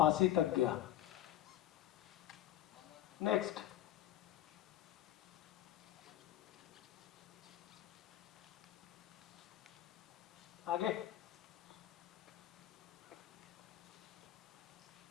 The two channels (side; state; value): right; quieter; 12.8 dB